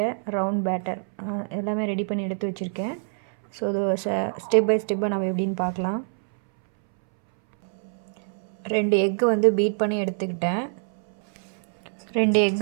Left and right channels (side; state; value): left; silent; 62 dB below the other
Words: ரவுண்ட் பேட்டர் எல்லாமே ரெடி பண்ணி எடுத்து வச்சுருக்கேன். ஸோ அது ஸ்டெப் பை ஸ்டெப்பாக நம்ம எப்படின்னு பார்க்கலாம். 2 எக்கு வந்து பீட் பண்ணி எடுத்துக்கிட்டேன். 2